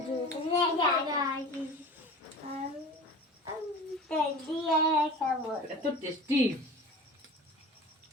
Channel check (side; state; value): both; normal; correlation 0.37